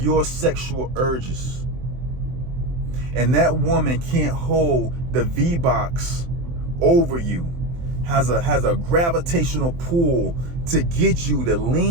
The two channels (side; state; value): left; late; 23 ms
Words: sexual urges, and that woman can't hold the V-box over you, has a gravitational pull to get you to